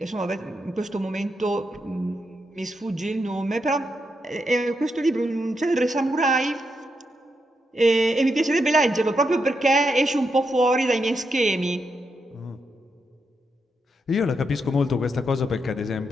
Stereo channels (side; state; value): both; normal; correlation 0.82